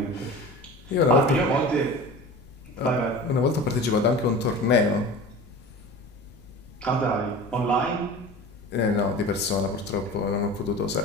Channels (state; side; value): noise; left; rumble, 23 dB below the sound